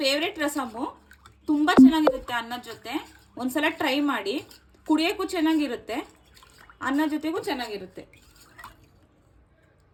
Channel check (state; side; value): identical; both; correlation 1.00